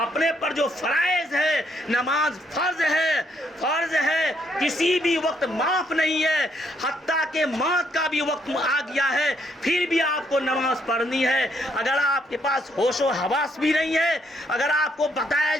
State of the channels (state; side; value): normal; both; correlation 0.72